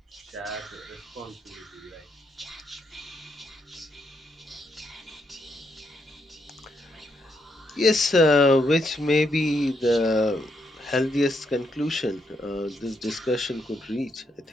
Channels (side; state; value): both; normal; correlation 0.78